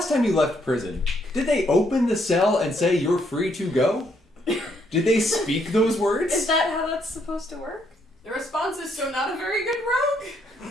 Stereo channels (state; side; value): normal; both; correlation 0.73